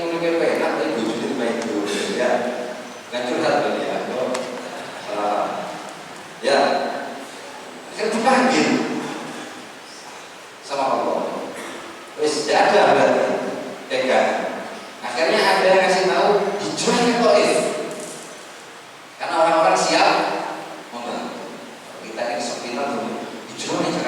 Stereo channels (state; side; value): identical; both; correlation 1.00